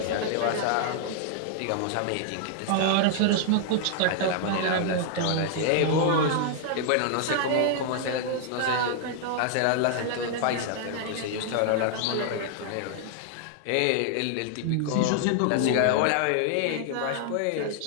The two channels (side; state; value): both; different; correlation 0.00